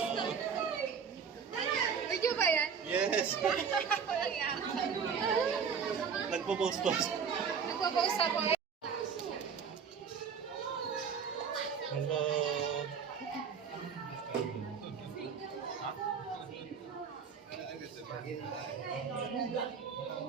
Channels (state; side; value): quieter; left; 6.5 dB